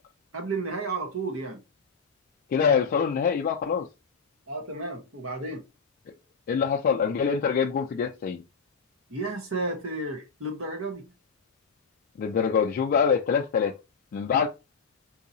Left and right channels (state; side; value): quieter; right; 4.9 dB